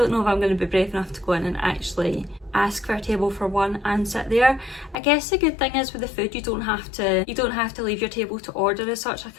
know if I'm going to be brave enough to go in and actually ask for a table for one and sit there. I guess the good thing is with the food, you don't have to leave your table to order as such. I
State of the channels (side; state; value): right; drops out; at 5.0 s